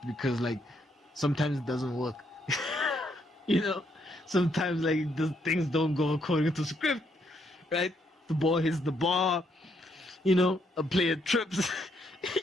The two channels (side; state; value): both; normal; correlation 0.74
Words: because, sometimes it doesn't work. Sometimes, the things don't go according to script, right? The ball hits the bar, a player trips.